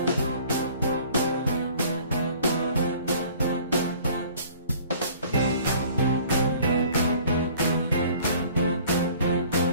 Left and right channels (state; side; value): inverted; both; correlation -0.51